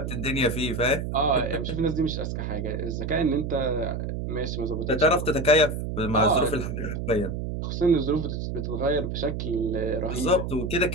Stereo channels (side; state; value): right; noise; hum, 4 dB below the sound